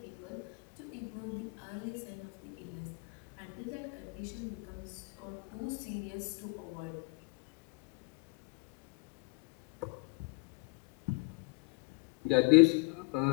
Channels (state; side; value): quieter; right; 29.8 dB